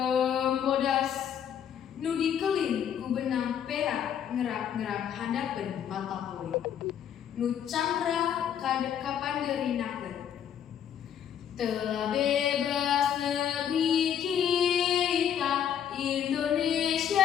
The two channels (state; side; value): quieter; right; 9.1 dB